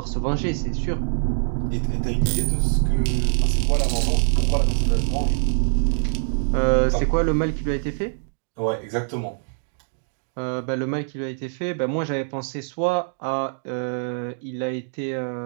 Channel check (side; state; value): left; silent; digital silence